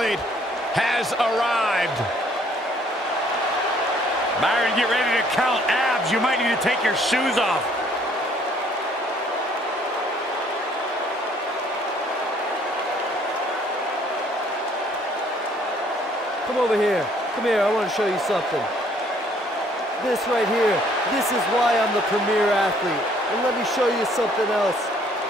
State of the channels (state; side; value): normal; both; correlation 0.62